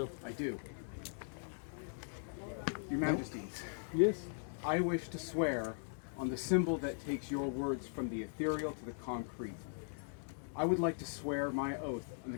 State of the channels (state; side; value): silent; right; digital silence